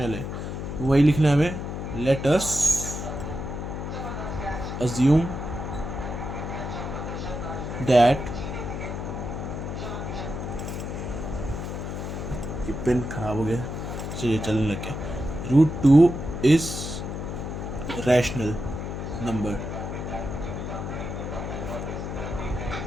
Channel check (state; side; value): noise; left; hum, 5 dB below the sound